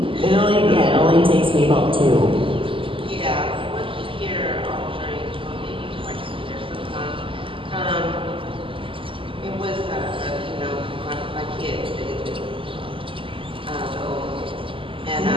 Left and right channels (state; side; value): late; left; 0.25 ms